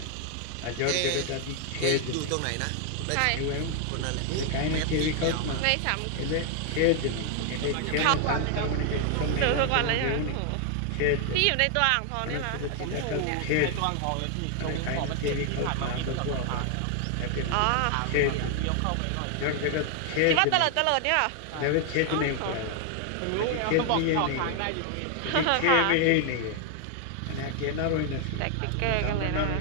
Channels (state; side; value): different; both; correlation 0.00